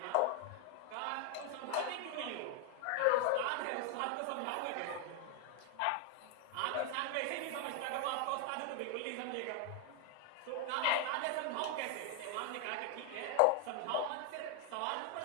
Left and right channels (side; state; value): both; different; correlation 0.00